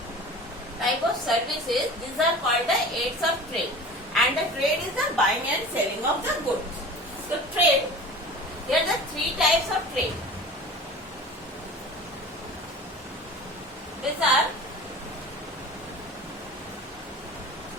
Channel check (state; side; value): normal; both; correlation 0.37